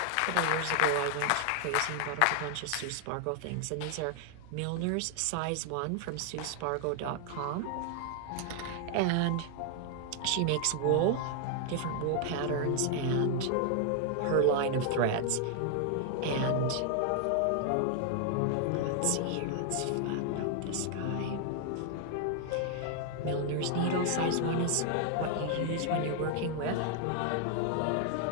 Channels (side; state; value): both; different; correlation 0.00